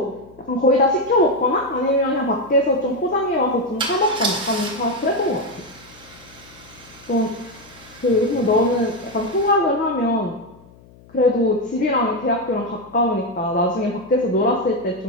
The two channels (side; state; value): left; noise; hum, 25 dB below the sound